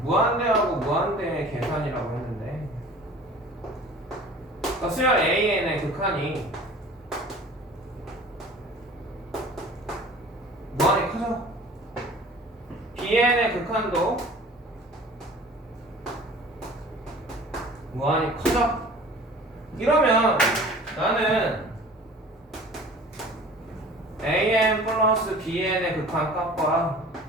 무한대하고 무한대의 계산이라고 했는데, 그러니까 수열 AN의 극한이 무한히 커져. BN의 극한도 무한히 커져. 이러면 나는 AN 플러스 BN의 극한 값과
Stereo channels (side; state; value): both; normal; correlation 0.45